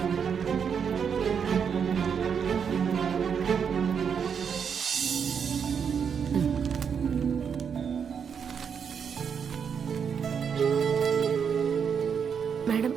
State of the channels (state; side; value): quieter; left; 7.0 dB